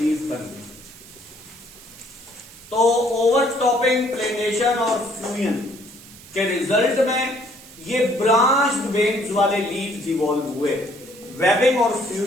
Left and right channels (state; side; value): noise; right; hiss, 20 dB below the sound